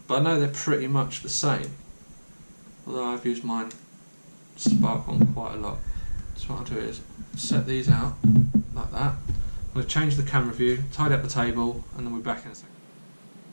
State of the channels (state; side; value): inverted; both; correlation -1.00